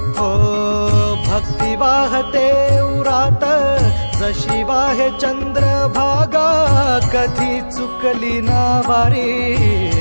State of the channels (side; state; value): both; inverted; correlation -1.00